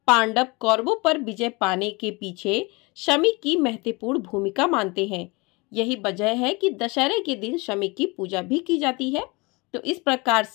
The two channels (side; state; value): right; quieter; 26.4 dB